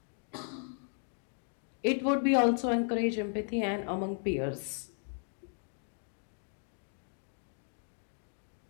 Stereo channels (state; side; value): silent; right; 54 dB below the other